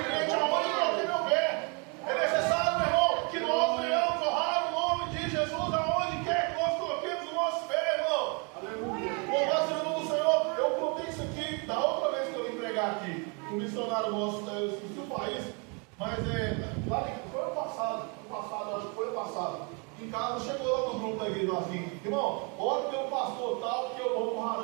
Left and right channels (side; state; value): left; quieter; 33.9 dB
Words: crente aonde eu coloquei meu pé. É necessário, meu irmão, que nós venhamos honrar o nome de Jesus aonde quer que nós coloquemos o nosso pé, irmão. Aleluia. Louvado seja o nome do Senhor. Eu contei isso aqui da outra vez que eu vim pregar aqui. Um missionário nosso, eu esqueci o país, mas foi ano passado, acho que foi ano passado. Em casa, chegou lá no grupo da igreja assim: irmão, ora pelo pastor tal, que eu vou pro